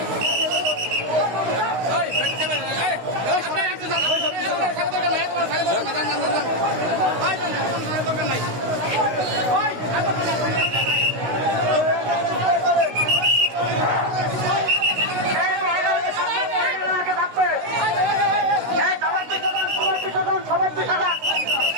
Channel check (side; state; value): left; late; 16 ms